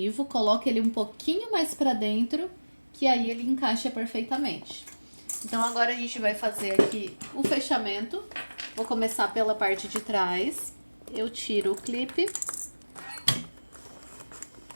coloca ele um pouquinho mais pra dentro, que aí ele encaixa perfeitamente. Então, agora a gente vai fazer aqui o fechamento. Vou começar pela parte de trás. Eu tiro o clipe.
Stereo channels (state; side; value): inverted; both; correlation -1.00